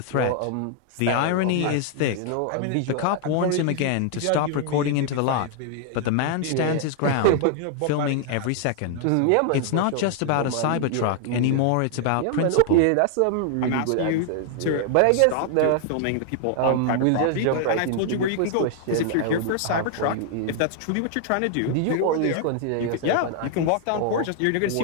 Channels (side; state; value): both; different; correlation 0.00